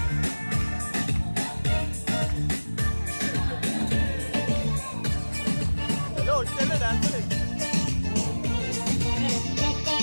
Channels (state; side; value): inverted; both; correlation -1.00